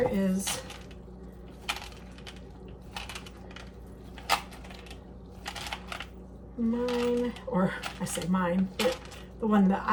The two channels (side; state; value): both; identical; correlation 1.00